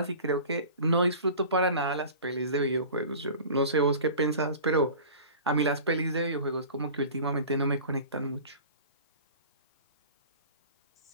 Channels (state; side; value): inverted; both; correlation -0.39